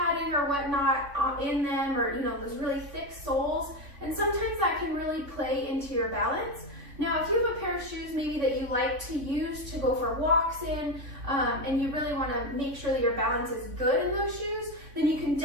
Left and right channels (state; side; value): late; left; 3.5 ms